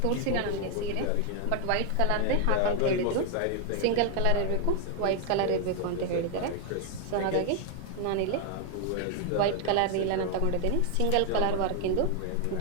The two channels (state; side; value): different; both; correlation 0.01